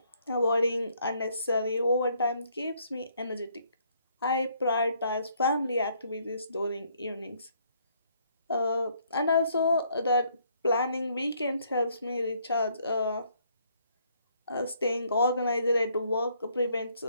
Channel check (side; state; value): both; inverted; correlation -0.68